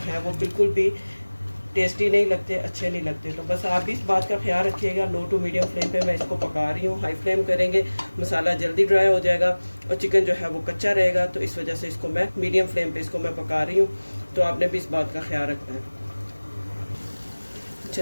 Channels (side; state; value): both; inverted; correlation -1.00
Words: वो बिल्कुल भी टेस्टी नहीं लगते, अच्छे नहीं लगते। तो बस आप भी इस बात का ख्याल रखिएगा। लो टू मीडियम फ्लेम पे मैं इसको पका रही हूँ। हाई फ्लेम करेंगे मसाला जल्दी ड्राई हो जाएगा और चिकन जो है वो कच्चा रहेगा। तो इस वजह से इसको मैं मीडियम फ्लेम पे इसको मैं पका रही हूँ। तो आपने भी इस बात का ख्याल रखना है।